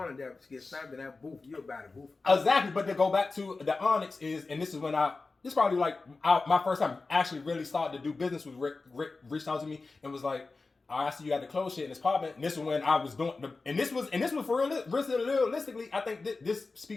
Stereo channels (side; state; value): right; quieter; 3.8 dB